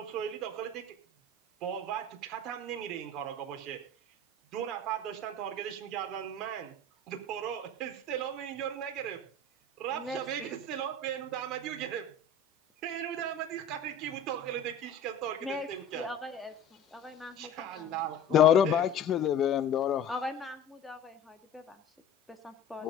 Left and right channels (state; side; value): quieter; right; 3.3 dB